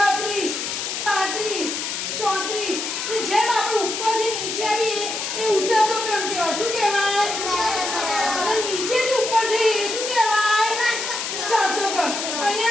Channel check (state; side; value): noise; left; hiss, 3 dB below the sound